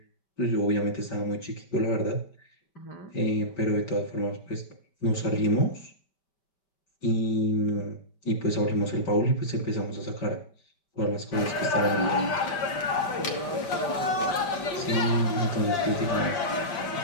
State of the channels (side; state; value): right; late; 5.2 ms